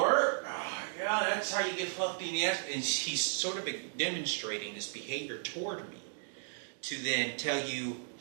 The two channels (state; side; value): silent; left; digital silence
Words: Yeah, that's how you get fucked in the ass." And he's sort of demonstrating this behavior toward me to then tell you,